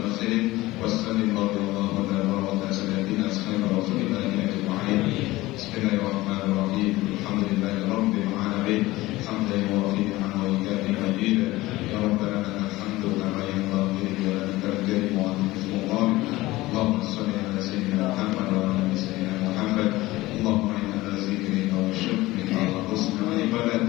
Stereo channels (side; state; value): right; quieter; 18.7 dB